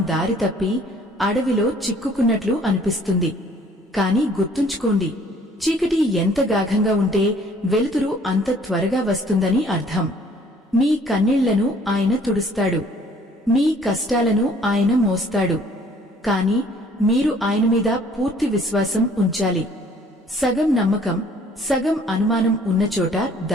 దారి తప్పి అడవిలో చిక్కుకున్నట్లు అనిపిస్తుంది. కాని గుర్తుంచుకోండి, చీకటి ఎంత గాఢంగా ఉంటే వెలుతురు అంత త్వరగా వస్తుందని అర్థం. మీ కన్నీళ్లను ఆయన తుడుస్తాడు, మీ కష్టాలను ఆయన మోస్తాడు. కాని మీరు ఆయన మీద పూర్తి విశ్వాసం ఉంచాలి. సగం నమ్మకం, సగం అనుమానం ఉన్నచోట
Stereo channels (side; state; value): both; normal; correlation 0.57